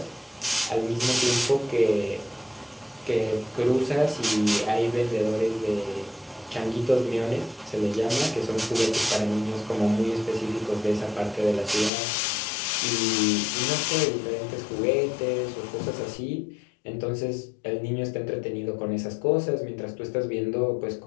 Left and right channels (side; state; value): right; drops out; at 11.9 s